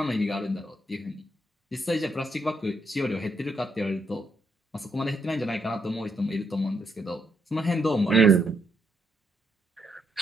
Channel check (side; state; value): both; normal; correlation 0.77